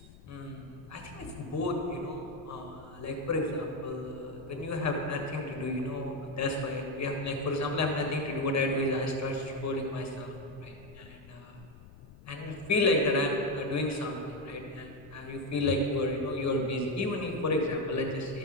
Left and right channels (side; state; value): left; noise; rumble, 20 dB below the sound